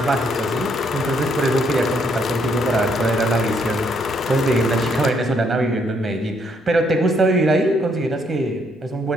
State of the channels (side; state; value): both; normal; correlation 0.71